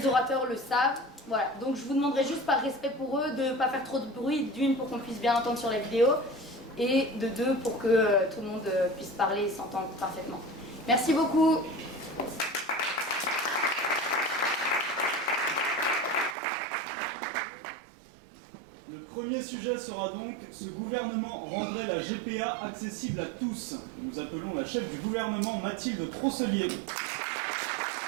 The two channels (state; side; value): drops out; left; at 16.4 s